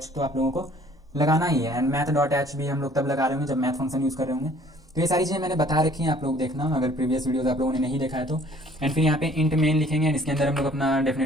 तो आप लोगों को लगाना ही है। एंड math.h भी हम लोग तब लगा रहे होंगे जब मैथ फंक्शन यूज़ कर रहे होंगे। तो ये सारी चीज़ें मैंने बता रखी हैं, आप लोग देखना अगर प्रीवियस वीडियोस आप लोगों ने नहीं देखा है तो। एंड फिर यहाँ पे इंट मेन लिखेंगे एंड इसके अंदर हम लोग अपना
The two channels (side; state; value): both; normal; correlation 0.56